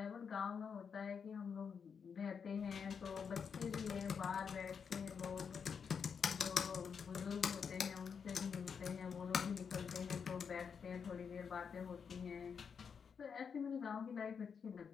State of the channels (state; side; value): quieter; right; 6.5 dB